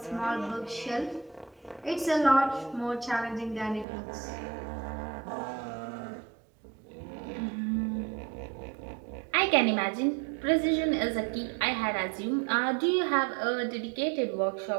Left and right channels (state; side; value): drops out; left; at 3.9 s